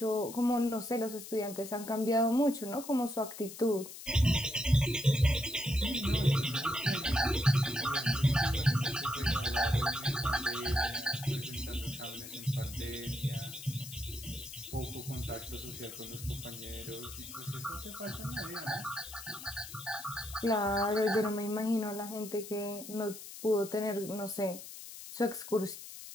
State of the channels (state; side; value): noise; left; hiss, 12 dB below the sound